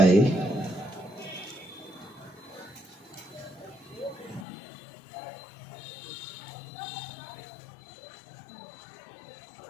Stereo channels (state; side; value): drops out; right; at 4.5 s